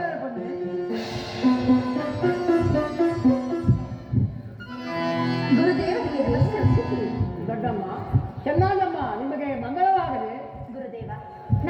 ಬನ್ನಿ. ದೊಡ್ಡಮ್ಮ ಚೆನ್ನಮ್ಮ ನಿಮಗೆ ಮಂಗಳವಾಗಲಿ. ಗುರುದೇವ,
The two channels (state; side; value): identical; both; correlation 1.00